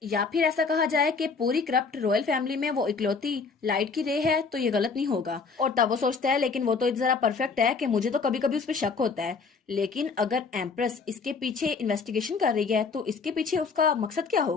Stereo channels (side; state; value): right; quieter; 4.9 dB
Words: या फिर ऐसा कहा जाए कि पूरी करप्ट रॉयल फैमिली में वो इकलौती लाइट की रे है, तो ये गलत नहीं होगा। और तब वो सोचता है लेकिन वो तो जरा परफेक्ट है कि मुझे तो कभी कभी उस पर शक होता है, लेकिन अगर एम्प्रेस इसके पीछे इन्वेस्टिगेशन कर रही है तो इसके पीछे उसका मकसद क्या